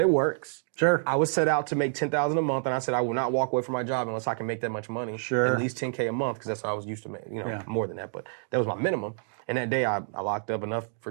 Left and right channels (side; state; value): left; silent; digital silence